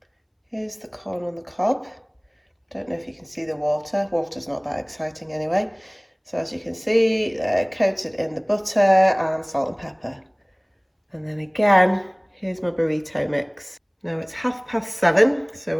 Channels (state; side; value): identical; both; correlation 1.00